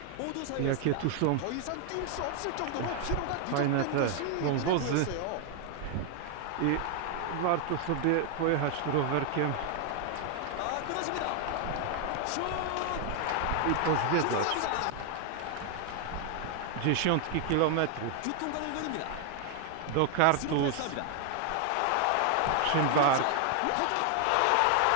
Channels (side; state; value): both; different; correlation 0.00